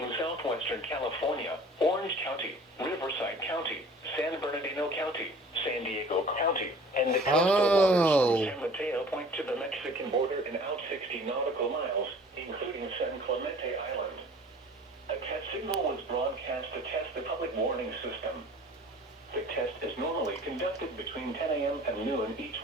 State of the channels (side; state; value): both; normal; correlation 0.47